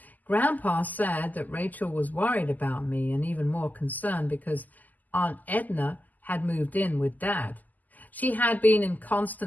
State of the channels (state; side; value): late; right; 0.082 ms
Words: Grandpa said that Rachel was worried about me and even more concerned because Aunt Edna had moved in with Dad. She had been in